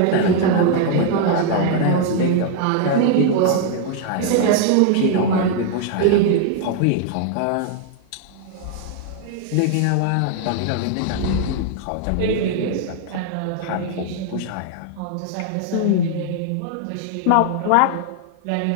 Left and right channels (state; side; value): different; both; correlation 0.00